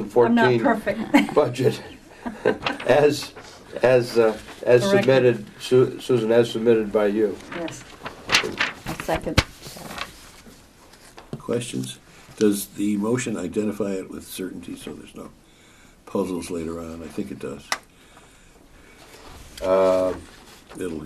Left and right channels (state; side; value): identical; both; correlation 1.00